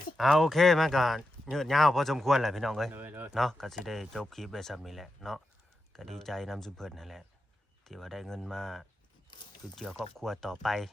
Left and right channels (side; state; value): both; normal; correlation 0.88